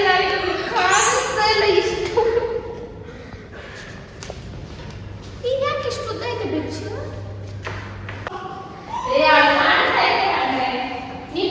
ಕಾಣಿಸ್ತಾ ಇಲ್ಲ ಇಷ್ಟು ಈಗ ಯಾಕೆ ಇಷ್ಟು ಉದ್ದ ಇದೆ ಬೆಚ್ಚು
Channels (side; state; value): both; identical; correlation 1.00